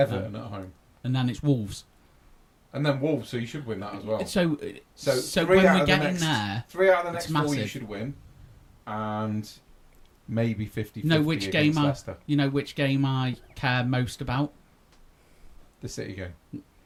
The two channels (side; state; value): both; identical; correlation 1.00